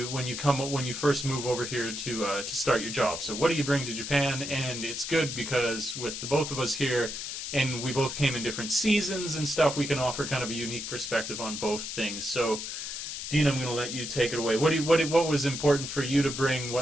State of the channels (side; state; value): left; noise; hiss, 6 dB below the sound